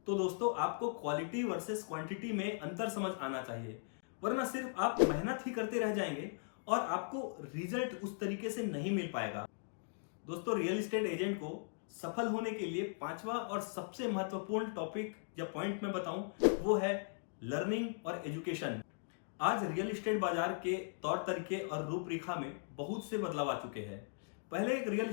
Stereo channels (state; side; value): silent; right; digital silence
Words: तो दोस्तों आपको क्वालिटी वर्सेस क्वांटिटी में अंतर समझ आना चाहिए, वरना सिर्फ आप मेहनत ही करते रह जाएंगे और आपको रिजल्ट उस तरीके से नहीं मिल पाएगा। दोस्तों रियल एस्टेट एजेंट को सफल होने के लिए 5वां और सबसे महत्वपूर्ण टॉपिक या पॉइंट मैं बताऊं वो है लर्निंग और एजुकेशन। आज रियल एस्टेट बाजार के तौर तरीके और रूपरेखा में बहुत से बदलाव आ चुके हैं। पहले एक रियल